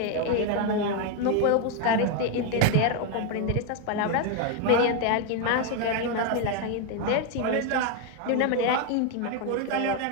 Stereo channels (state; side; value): different; both; correlation 0.01